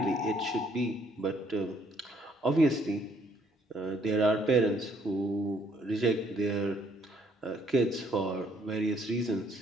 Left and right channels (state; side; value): normal; both; correlation 0.66